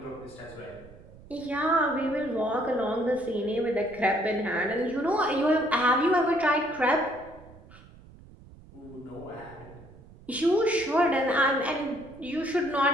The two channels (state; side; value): noise; right; rumble, 21 dB below the sound